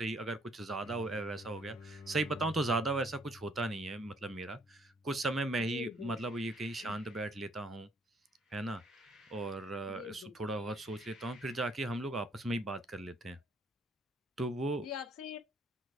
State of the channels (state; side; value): normal; both; correlation 0.64